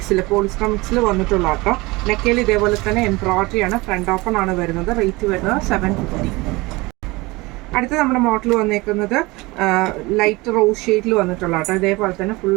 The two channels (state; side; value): quieter; left; 22.7 dB